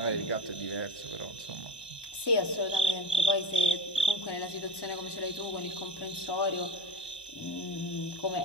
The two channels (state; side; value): late; right; 1.1 ms